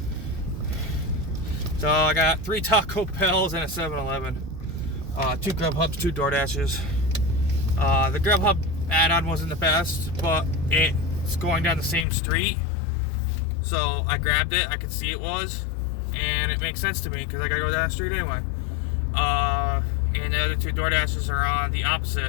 So I got 3 Taco Bells and a 7-Eleven. 2 Grubhubs, 2 DoorDashes. The Grubhub add-on wasn't the best, but it's going down the same street. So I grabbed it. I could see it was. And it makes sense to me because I gotta go down the street anyway. And the other 2 DoorDashes are on the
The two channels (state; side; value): drops out; right; at 12.1 s